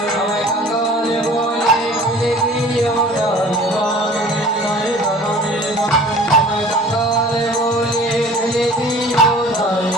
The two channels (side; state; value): both; normal; correlation 0.45